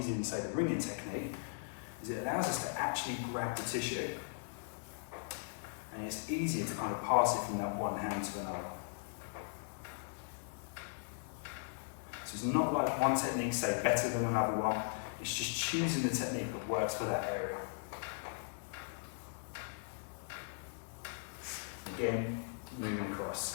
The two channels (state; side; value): silent; right; digital silence